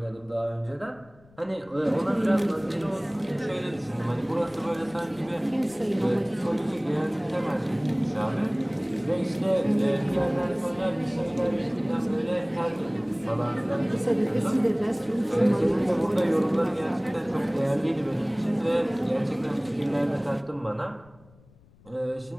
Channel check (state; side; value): noise; left; rumble, 27 dB below the sound